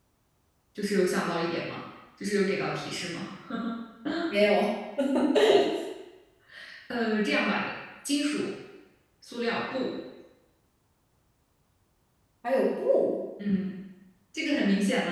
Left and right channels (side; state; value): both; identical; correlation 1.00